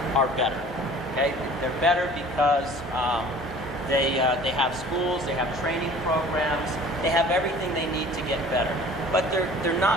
are better. Okay, they're better because they have schools, they have training programs, they have everything they need to get better. But they're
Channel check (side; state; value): both; normal; correlation 0.47